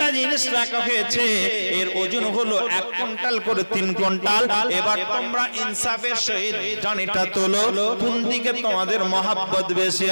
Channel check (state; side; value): inverted; both; correlation -1.00